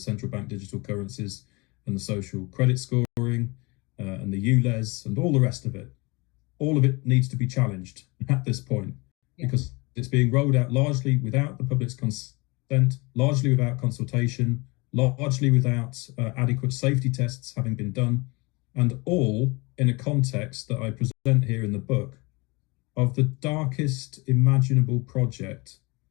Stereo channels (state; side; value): quieter; right; 26.2 dB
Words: bank digital currencies and the social credit scoring and the ULEZ and all the rest of it, all of it needs to be challenged at this point, because it's being rolled out largely without the public's consent, largely without consultation, largely without adequate safety tests having been done, and all in a context that I present here in the book of the darkest imaginable project